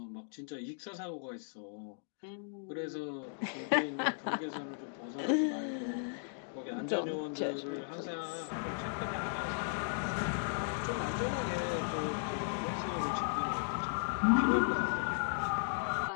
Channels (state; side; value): silent; right; digital silence